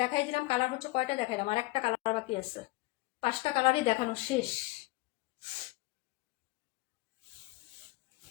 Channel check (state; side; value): quieter; right; 21.5 dB